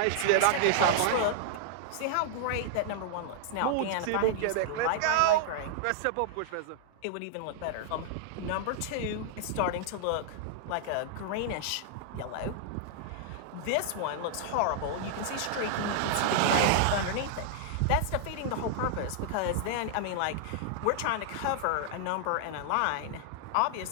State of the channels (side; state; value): both; different; correlation -0.01